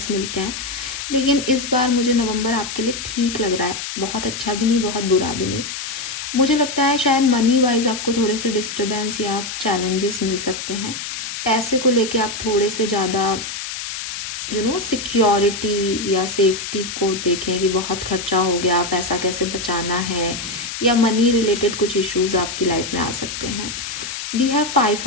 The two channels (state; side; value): noise; left; hiss, 7 dB below the sound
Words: मिलते हैं, लेकिन इस बार मुझे नवंबर आपके लिए ठीक लग रहा है। बहुत अच्छा भी नहीं, बहुत बुरा भी नहीं। मुझे लगता है शायद मनी वाइज आपको थोड़े से डिस्टर्बेंस या चैलेंजेस मिल सकते हैं। पैसे को लेके आप थोड़े से ज़्यादा सिक्योरिटी या सेफ्टी को देखें कि बहुत खर्चा हो गया, पैसा कैसे बचाना है, या मनी रिलेटेड कुछ इश्यूज आपकी लाइफ में आ सकते हैं। We have